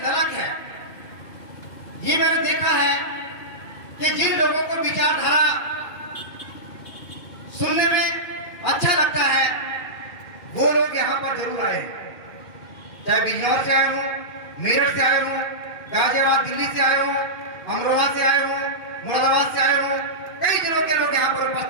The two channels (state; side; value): late; right; 2.5 ms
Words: ललक है, ये मैंने देखा है कि जिन लोगों को विचारधारा सुनने में अच्छा लगता है वो लोग यहाँ पर जरूर आए। चाहे बिजनौर से आए हो, मेरठ से आए हो, गाजियाबाद दिल्ली से आए हो, अमरोहा से आए हो, मुरादाबाद से आए हो, कई जिलों के लोग यहाँ पर